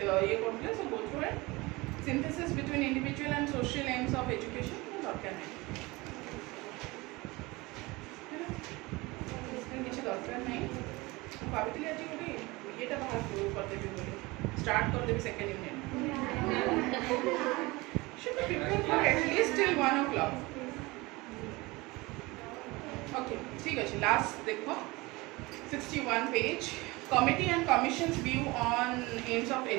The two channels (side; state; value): left; quieter; 22.9 dB